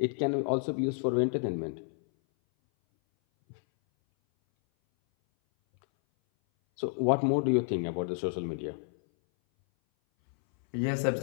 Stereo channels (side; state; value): right; silent; 58 dB below the other